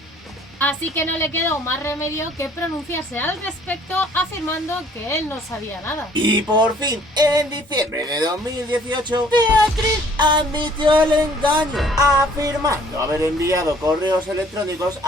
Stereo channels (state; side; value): normal; both; correlation 0.57